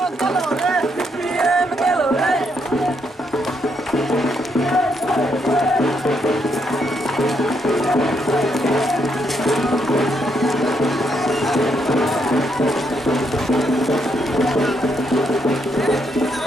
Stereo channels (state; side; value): normal; both; correlation 0.76